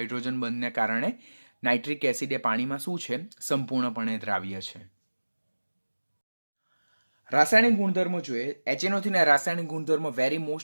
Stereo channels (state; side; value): inverted; both; correlation -1.00